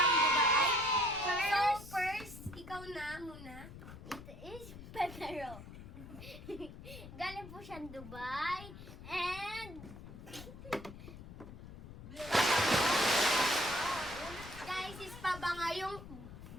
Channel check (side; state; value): left; noise; rumble, 14 dB below the sound